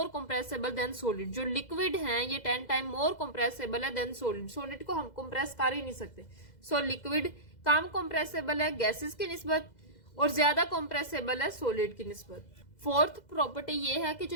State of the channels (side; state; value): right; late; 2.0 ms